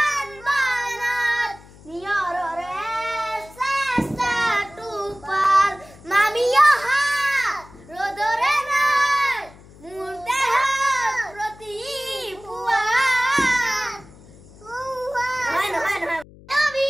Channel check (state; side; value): noise; left; hum, 22 dB below the sound